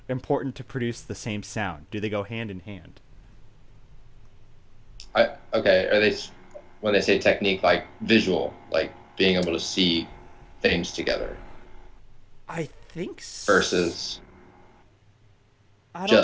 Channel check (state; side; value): identical; both; correlation 1.00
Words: to produce the same sound? Do they go hand in hand? Okay, are they, when they say technique, like visual, like being able to see things together? I think so. Versus